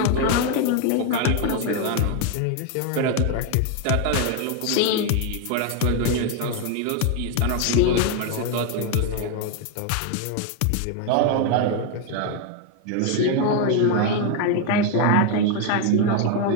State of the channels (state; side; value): different; both; correlation 0.01